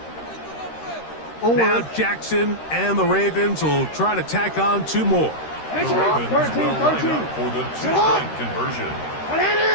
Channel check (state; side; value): late; right; 13 ms